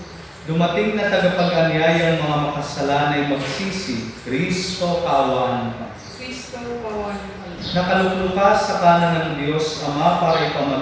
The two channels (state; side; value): identical; both; correlation 1.00